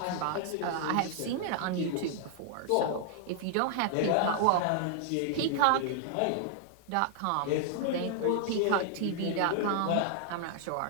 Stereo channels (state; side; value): different; both; correlation 0.00